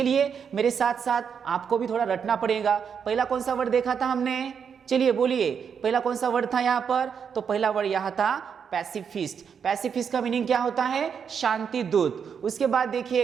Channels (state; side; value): quieter; left; 7.0 dB